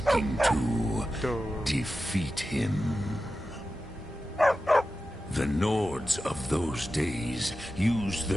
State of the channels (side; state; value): both; normal; correlation 0.92